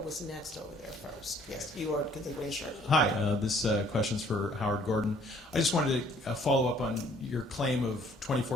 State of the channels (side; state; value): both; normal; correlation 0.59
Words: next over there first. Yes, you are the green shirt. Hi, this question's for Howard Gordon. I just wanted to follow up on your claim of